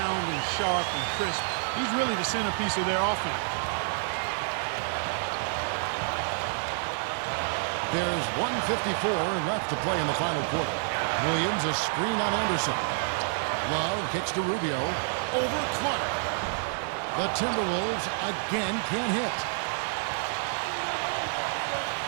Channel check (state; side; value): silent; left; digital silence